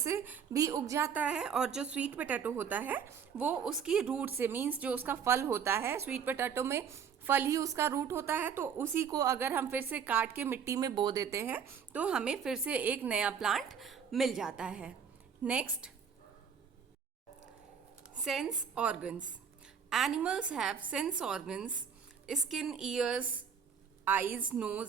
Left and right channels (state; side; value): quieter; left; 7.1 dB